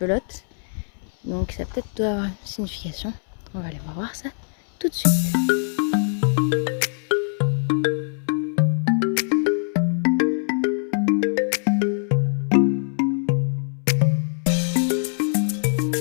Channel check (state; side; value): silent; right; 63 dB below the other